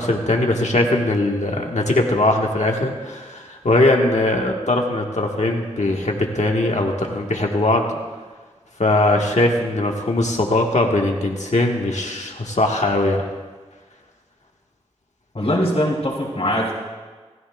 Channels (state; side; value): normal; both; correlation 0.60